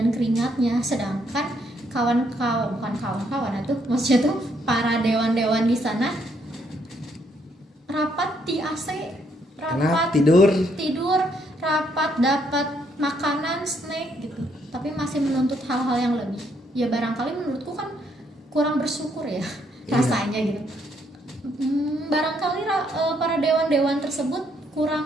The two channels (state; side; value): normal; both; correlation 0.72